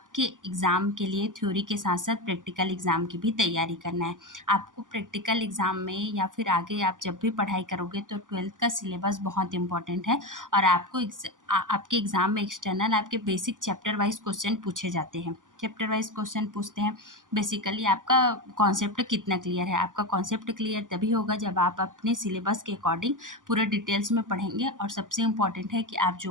एग्ज़ाम के लिए थ्योरी के साथ साथ प्रैक्टिकल एग्ज़ाम की भी तैयारी करना है। आपको प्रैक्टिकल एग्ज़ाम में या फिर आगे आप जब भी पढ़ाई करोगे तो 12th का सिलेबस बहुत इंपॉर्टेंट है और आपको आपके एग्ज़ाम में एक्सटर्नल आपके बेसिक चैप्टर वाइज क्वेश्चन पूछे जाते हैं। चैप्टर वाइज क्वेश्चन पूछते हैं। बेसिकली आपका कॉन्सेप्ट कितना क्लियर है। आपका कॉन्सेप्ट क्लियर तभी होगा जब आप अपने सिलेबस के अकॉर्डिंग पूरे डिटेल्स में पढ़ेंगे। और सबसे इम्पॉर्टेंट है कि आप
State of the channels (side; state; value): left; late; 0.88 ms